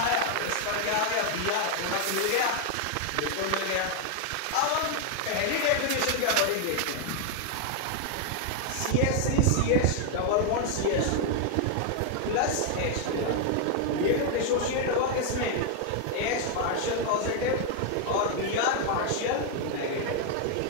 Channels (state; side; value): different; both; correlation 0.01